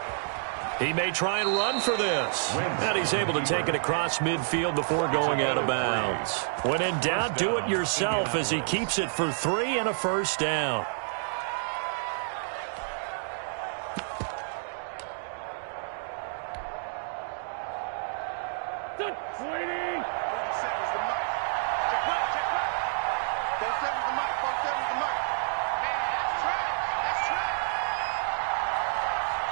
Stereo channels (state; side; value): silent; left; digital silence